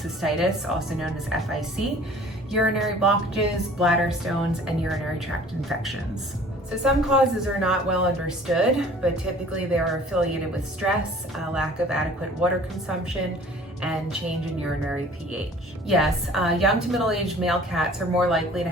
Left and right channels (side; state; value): both; normal; correlation 0.50